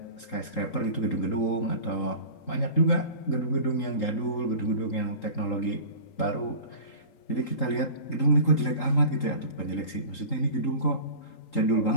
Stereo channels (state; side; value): late; right; 3.8 ms